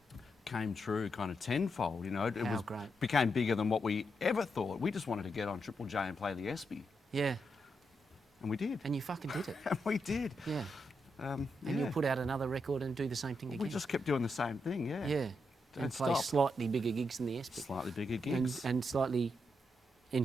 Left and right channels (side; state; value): both; normal; correlation 0.83